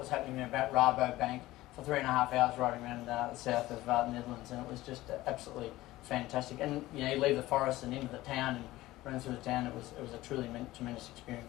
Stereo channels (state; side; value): quieter; right; 17.2 dB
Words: happening about Rabobank, for 3.5 hours riding around the south of the Netherlands, and it was just absolutely fantastic. And you know, you leave the forest and into the town and run through the town. It was a truly tremendous